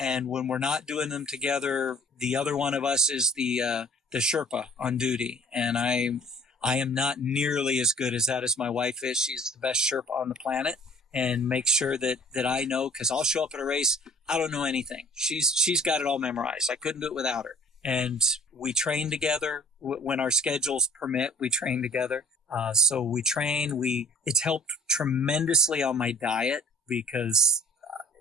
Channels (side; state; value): both; normal; correlation 0.51